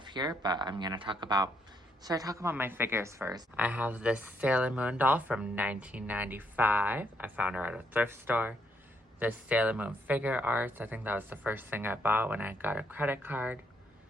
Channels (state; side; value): normal; both; correlation 0.74